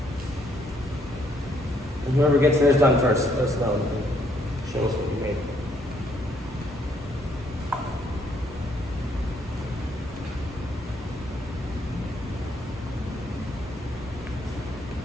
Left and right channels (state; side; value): normal; both; correlation 0.69